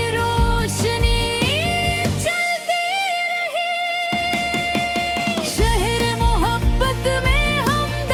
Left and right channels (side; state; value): both; identical; correlation 1.00